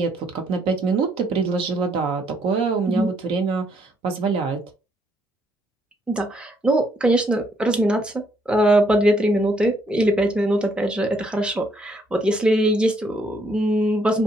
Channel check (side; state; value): both; normal; correlation 0.71